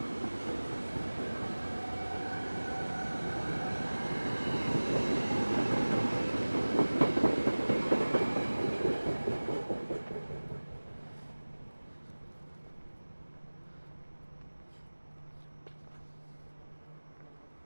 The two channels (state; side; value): inverted; both; correlation -1.00